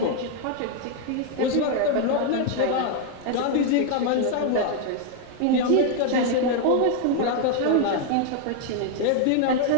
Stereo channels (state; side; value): different; both; correlation 0.00